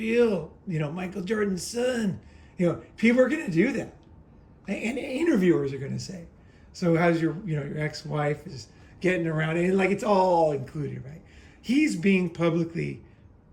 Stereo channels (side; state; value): both; identical; correlation 1.00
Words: Michael Jordan's son. People are going to do that. And interviewers are going to say, so how's your ex-wife is getting around, and like it's all included, right? He's being publicly